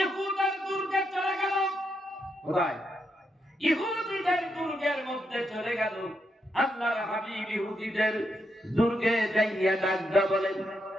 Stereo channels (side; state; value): both; normal; correlation 0.81